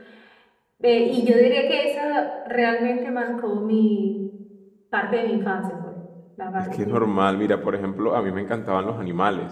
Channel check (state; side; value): identical; both; correlation 1.00